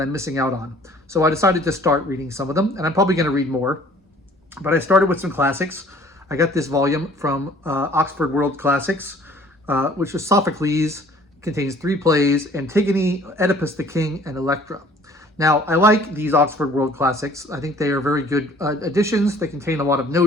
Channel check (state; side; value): normal; both; correlation 0.54